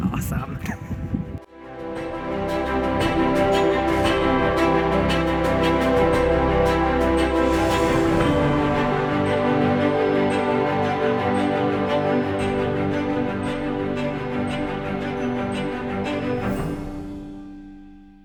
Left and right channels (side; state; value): both; identical; correlation 1.00